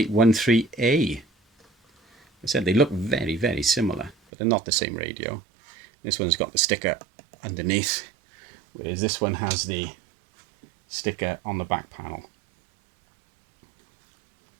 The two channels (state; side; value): drops out; left; at 4.2 s